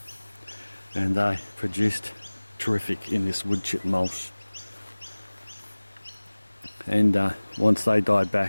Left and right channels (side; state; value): both; inverted; correlation -1.00